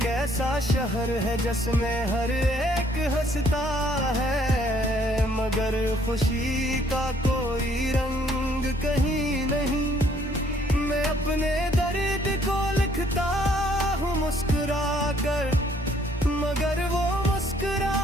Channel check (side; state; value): both; normal; correlation 0.64